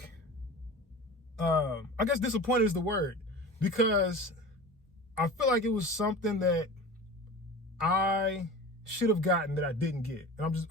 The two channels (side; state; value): both; normal; correlation 0.34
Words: I guess disappointed is the word, because I feel like it was something that I should have gotten that I didn't get. And